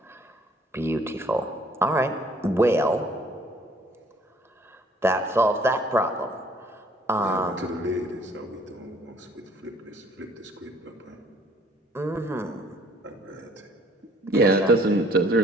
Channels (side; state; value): both; normal; correlation 0.58